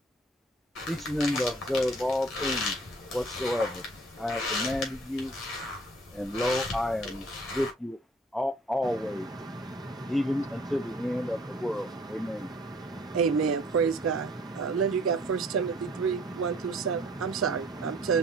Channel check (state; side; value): normal; both; correlation 0.54